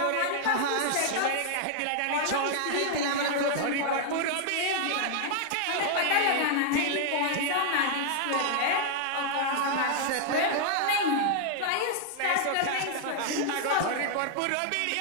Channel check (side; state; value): both; different; correlation 0.00